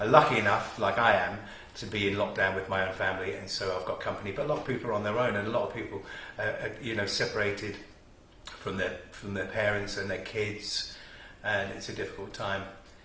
are lucky enough, like I am, to be in lockdown with my own family, and so I've got company. But a lot of people are on their own, and a lot of people are separated from their parents and their kids, and it's a difficult time.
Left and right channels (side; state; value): both; identical; correlation 1.00